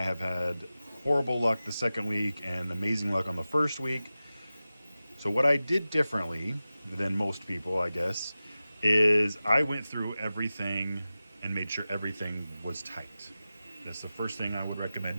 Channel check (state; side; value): inverted; both; correlation -0.95